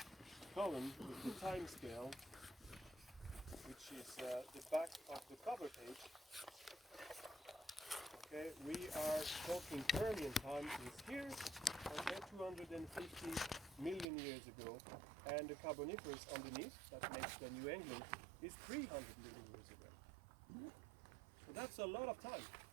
column with the time scale, which is the back of the cover page. Okay, we are talking Permian time is here, okay, 250 million years ago, and the Carboniferous underneath, that makes the New England, is 300 million years ago. So that's a lot of time.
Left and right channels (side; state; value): left; drops out; at 14.1 s